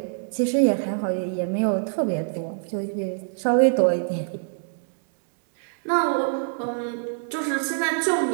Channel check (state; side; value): silent; left; 62 dB below the other